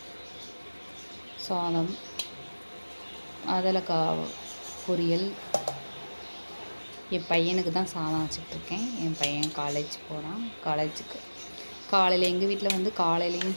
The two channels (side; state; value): both; inverted; correlation -1.00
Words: சாதம், அதலக்காய் பொரியல். என் பையனுக்கு தான் சாதம் வச்சுட்ருக்கேன். என் பையன் காலேஜ் போகிறான். காலேஜுக்கு காலையில் எங்கள் வீட்டில் வந்து